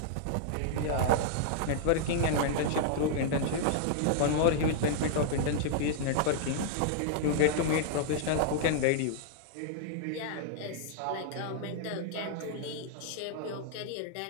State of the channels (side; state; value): both; different; correlation -0.01